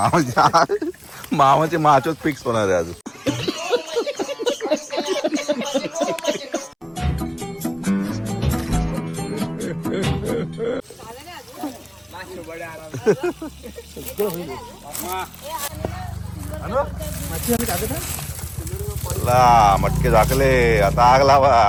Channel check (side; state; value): both; identical; correlation 1.00